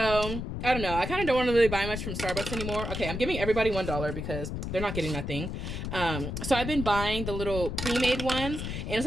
I don't know. I kind of don't want to really buy much from Starbucks anymore. Okay, I'm giving everybody $1 because they're not getting nothing. So I've been buying the little pre-made ones, and it's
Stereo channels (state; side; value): noise; left; rumble, 5 dB below the sound